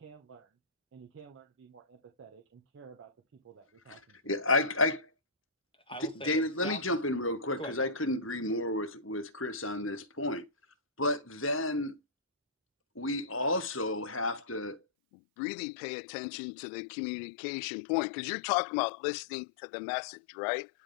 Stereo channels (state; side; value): drops out; right; at 14.8 s